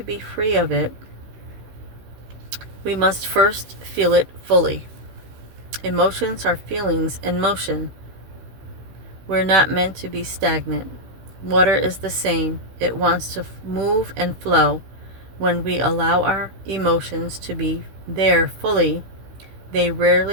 be free of it, we must first feel it fully. Emotions are feelings in motion. We're not meant to be stagnant. Water is the same. It wants to move and flow. When we allow our emotions to be there fully, they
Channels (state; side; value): late; left; 16 ms